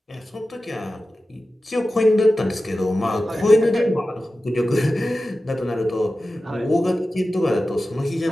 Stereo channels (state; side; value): normal; both; correlation 0.94